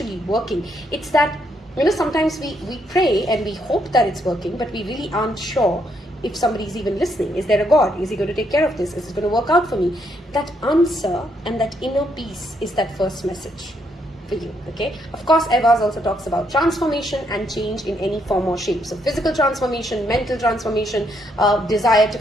working. It's that, sometimes we pray and we hope that it's working, but we really aren't sure if somebody's even listening. Is there a God? Is he going to take care of this? Is it going to work out for me? That answer and that inner peace is that first message for you. Okay, of course, Evas also talks about transformation and change in any form or shape. So physical transformation, mental transformation, desire to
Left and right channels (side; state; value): both; normal; correlation 0.74